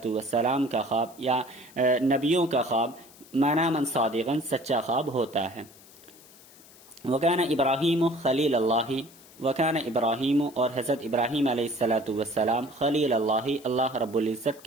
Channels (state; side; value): noise; left; hiss, 23 dB below the sound